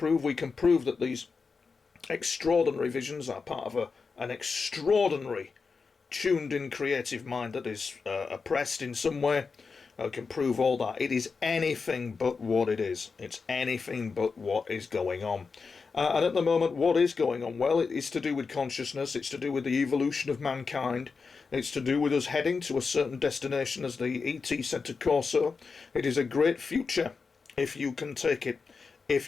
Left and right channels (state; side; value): quieter; right; 4.9 dB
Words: We can prove that these extraordinary visions are part of an extraordinary tuned-in creative mind that is oppressed in some way. I can prove all that. It is anything but what it is. It's anything but what is going on. And at the moment, what is going on? Well, it is to do with consciousness. It's to do with the evolution of mankind. It's to do with us heading to a certain destination, as the ET said to Corso. It is a great future if you can take it,